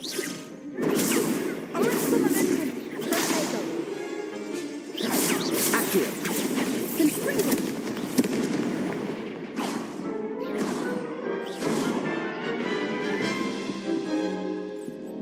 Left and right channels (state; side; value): identical; both; correlation 1.00